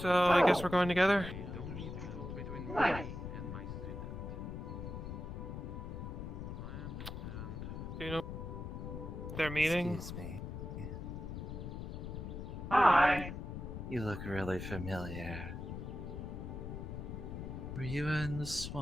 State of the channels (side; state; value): left; noise; rumble, 6 dB below the sound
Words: I guess we're going together. Don't need to go between Nice. me and my student. I understand. Do you know their meeting? Excuse me. Hi. You look really familiar. Were you in the